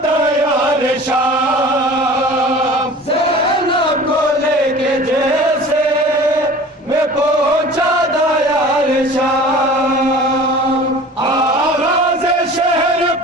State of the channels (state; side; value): normal; both; correlation 0.42